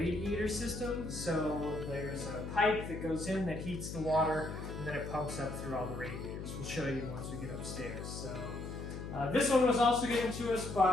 system. So there's a pipe that goes in that heats the water, and then it pumps up through all the radiators. We'll show you once we get upstairs. So this one was also given to us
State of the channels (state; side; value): noise; left; hum, 7 dB below the sound